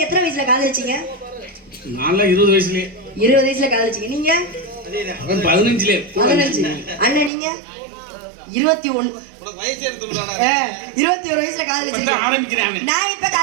எத்தனை வயசுல காதலிச்சீங்க? நான்லாம் 20 வயசுலயே 20 வயசுல காதலிச்சீங்க. நீங்க அவன் 15லயே 15. அண்ணன் நீங்க 21. 21 வயசுல காதலிச்சீங்க. ஆரம்பிக்கிறாங்க. நான் எப்ப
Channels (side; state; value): left; drops out; at 7.3 s